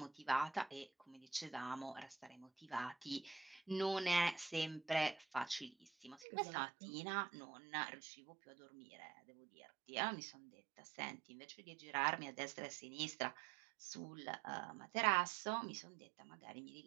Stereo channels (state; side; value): drops out; left; at 6.2 s